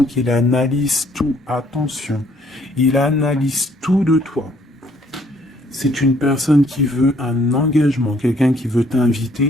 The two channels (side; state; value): both; normal; correlation 0.64